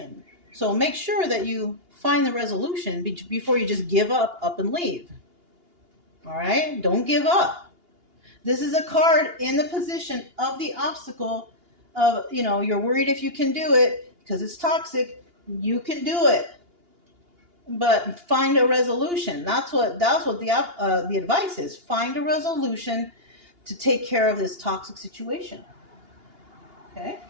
So make sure that you find the resolution before you just give up and leave. All right? Don't give up. This is a card in the position of the obstacle of, you know, you're worried if you can do it because it's toxic. You can do it. But find a resolution. That's what the advice is. Find a resolution to take care of this toxic situation. Okay?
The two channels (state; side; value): late; left; 2.8 ms